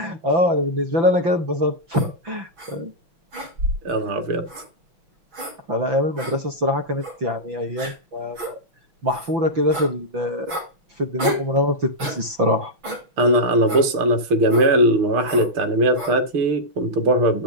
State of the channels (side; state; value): left; late; 6.1 ms